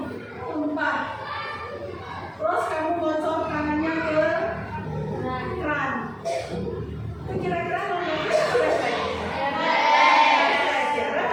tumpah. Terus kamu bocor tangannya ke keran. Itu kira-kira non refleks atau refleks? Refleks ya,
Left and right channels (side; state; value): both; identical; correlation 1.00